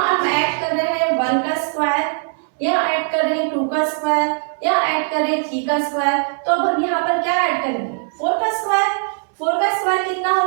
हम ऐड कर रहे हैं 1 का स्क्वायर, यहाँ ऐड कर रहे हैं 2 का स्क्वायर, यहाँ ऐड कर रहे हैं 3 का स्क्वायर। तो अब हम यहाँ पर क्या ऐड करेंगे 4 का स्क्वायर। 4 का स्क्वायर कितना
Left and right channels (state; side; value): silent; left; 66 dB below the other